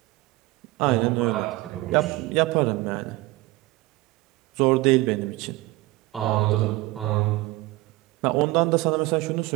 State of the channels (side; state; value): left; quieter; 19.7 dB